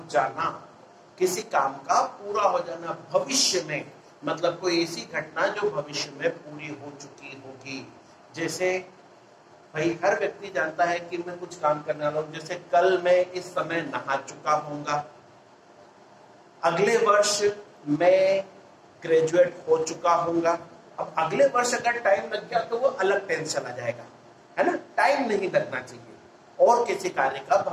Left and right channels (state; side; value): identical; both; correlation 1.00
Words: जाना, किसी काम का पूरा हो जाना भविष्य में, मतलब कोई ऐसी घटना जो भविष्य में पूरी हो चुकी होगी। जैसे भाई हर व्यक्ति जानता है कि मैं कुछ काम करने वाला हूं, जैसे कल मैं इस समय नहा चुका हूंगा, अगले वर्ष मैं ग्रेजुएट हो चुका हूंगा। अब अगले वर्ष अगर टाइम लग गया तो वो अलग टेंस चला जाएगा, है ना। टाइम नहीं लगना चाहिए। और किसी कार्य का